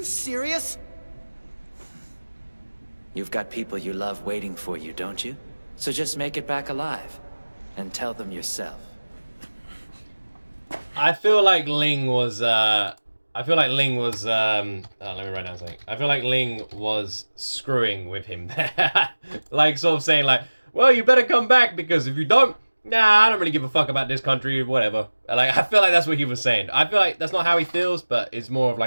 serious? You've got people you love waiting for you, don't you? So just make it back alive. And tell them yourself. I feel like Ling was, let me write down something. I feel like Ling was screwing with him there. Like, sort of saying, like, well, you better come back, because if you don't, nah, I don't really give a fuck about this country, whatever. Like, I feel like that's what he was saying. I feel like that's not how he feels, but it's more of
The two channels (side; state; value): both; inverted; correlation -1.00